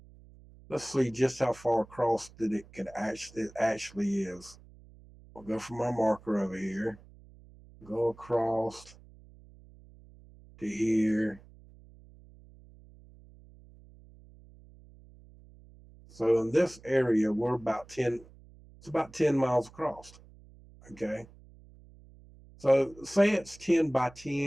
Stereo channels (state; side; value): noise; right; hum, 23 dB below the sound